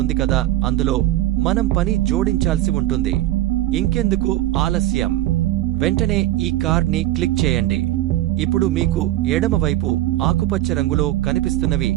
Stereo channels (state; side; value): quieter; left; 14.9 dB